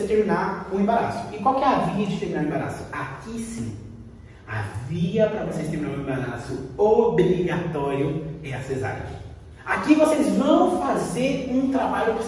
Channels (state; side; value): identical; both; correlation 1.00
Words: terminar o embaraço. E qual que é a via de terminar o embaraço? Aqui sim. A via para vocês terminar o embaraço obrigatório é a cesárea. Aqui vocês vão fazer um trabalho